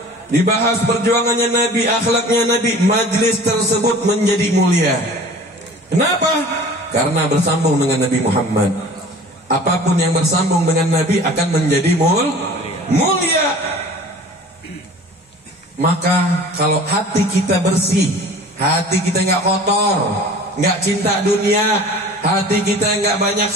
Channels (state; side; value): normal; both; correlation 0.44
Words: dibahas perjuangannya Nabi, akhlaknya Nabi, majlis tersebut menjadi mulia. Kenapa? Karena bersambung dengan Nabi Muhammad. Apapun yang bersambung dengan Nabi akan menjadi mulia. Maka kalau hati kita bersih, hati kita nggak kotor, nggak cinta dunia, hati kita nggak banyak